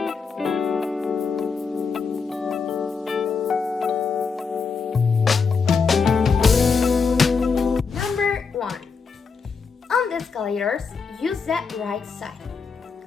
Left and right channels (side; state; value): right; quieter; 5.3 dB